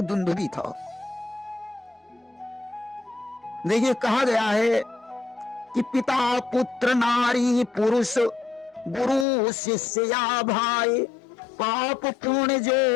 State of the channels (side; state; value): right; drops out; at 9.2 s